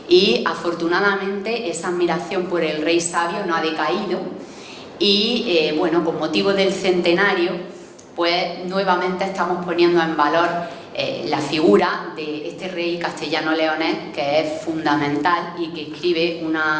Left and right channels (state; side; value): identical; both; correlation 1.00